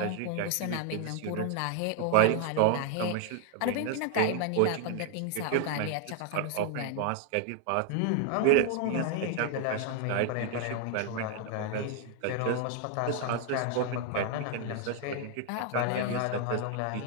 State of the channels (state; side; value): different; both; correlation 0.00